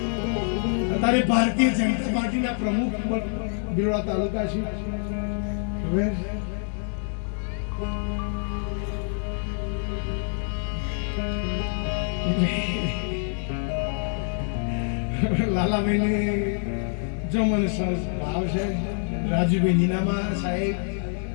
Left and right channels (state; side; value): silent; right; 61 dB below the other